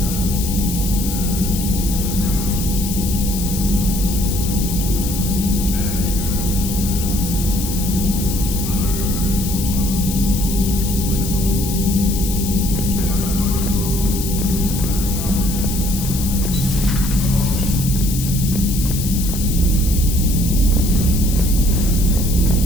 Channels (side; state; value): left; noise; hiss, 7 dB below the sound